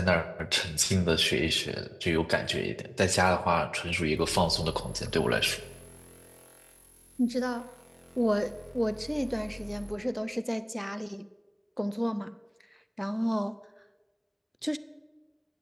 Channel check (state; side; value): identical; both; correlation 1.00